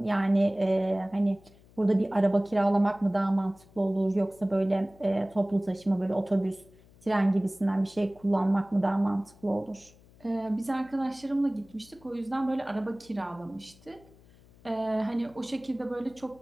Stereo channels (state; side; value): noise; left; hum, 26 dB below the sound